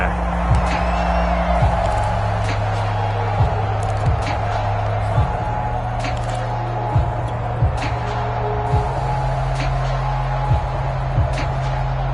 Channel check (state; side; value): identical; both; correlation 1.00